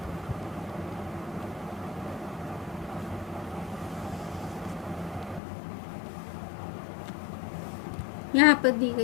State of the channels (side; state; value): right; drops out; at 5.4 s